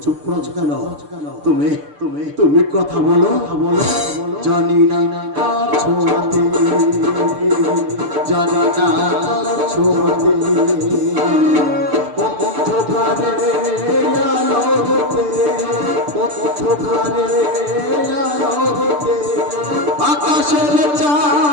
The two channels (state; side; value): late; left; 6.8 ms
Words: চুপ করেছো কেন? তুমি তুমি তুমি কথা বলো, জানি না কার ছোঁয়াতে, জানি না কার ছোঁয়াতে, অন্ধকারে আলো হতে, অন্ধকারে আলো হতে, আকাশের